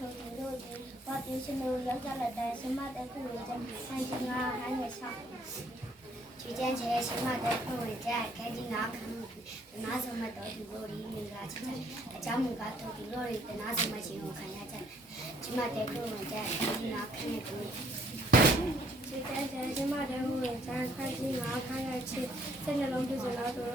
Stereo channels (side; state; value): both; normal; correlation 0.65